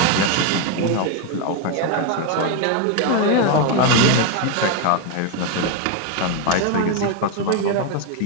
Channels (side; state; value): both; different; correlation 0.01